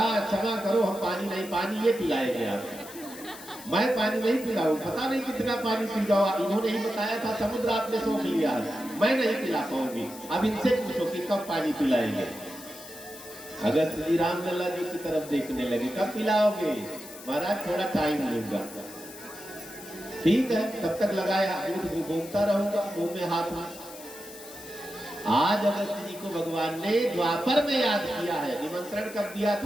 क्षमा करो, हम पानी नहीं, पानी ये पिलाएंगे आपको, मैं पानी नहीं पिलाऊं, पता नहीं कितना पानी पी जाओ, इन्होंने ही बताया था समुद्र आपने सोख लिया, मैं नहीं पिला पाऊंगी, अब इनसे पूछो कि कब पानी पिलाएंगे। अगस्त जी रामलला जी की तरफ देखने लगे, कब पिलाओगे, महाराज थोड़ा टाइम लूंगा, ठीक है, तब तक लगाया, दूध घूमता रहूंगा, मुंह में हाथ में। आज अगस्त जी को भगवान ने द्वापर में याद किया है, निमंत्रण कब दिया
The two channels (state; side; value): noise; left; hiss, 16 dB below the sound